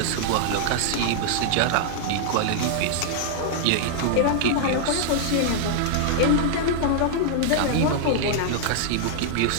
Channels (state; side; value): different; both; correlation -0.01